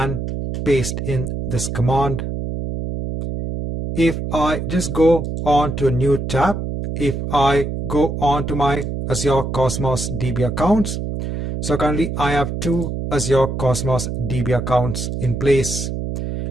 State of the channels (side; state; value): right; noise; hum, 4 dB below the sound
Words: paste in this command. If I just go on to a new tab, if I go on to my Azure Cosmos DB accounts, so currently I have 2 Azure Cosmos DB accounts in place.